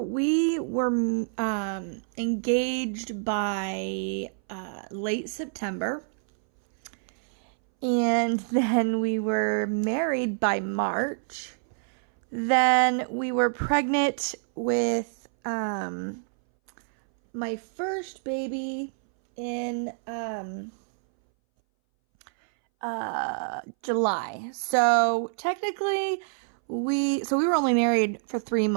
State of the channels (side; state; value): left; silent; 60 dB below the other